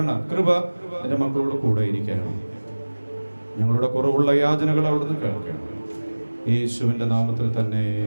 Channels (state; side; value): inverted; both; correlation -1.00